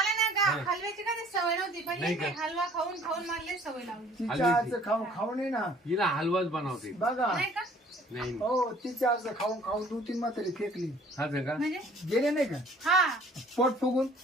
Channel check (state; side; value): normal; both; correlation 0.54